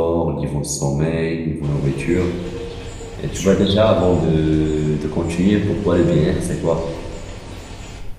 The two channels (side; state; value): both; identical; correlation 1.00